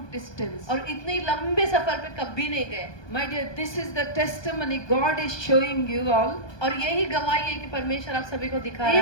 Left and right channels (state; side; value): late; right; 1.2 ms